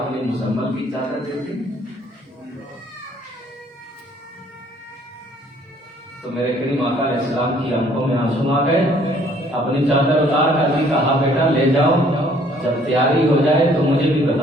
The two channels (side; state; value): both; normal; correlation 0.60